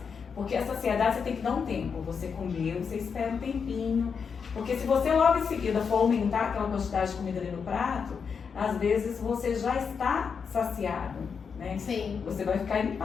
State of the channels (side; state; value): right; quieter; 6.1 dB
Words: Porque a saciedade você tem que dar um tempo. Você comeu, você espera um tempinho. Porque se você logo em seguida for aumentar aquela quantidade de comida ali no prato, às vezes você já está saciado, né? Sim. Você vai ficar